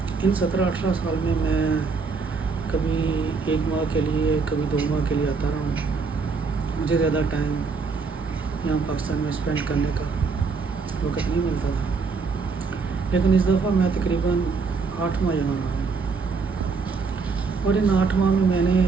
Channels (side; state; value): left; quieter; 4.8 dB